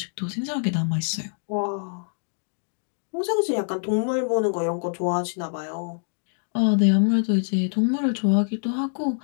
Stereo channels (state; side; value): silent; right; digital silence